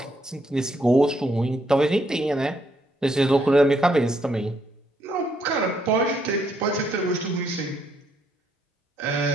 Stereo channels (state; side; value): normal; both; correlation 0.73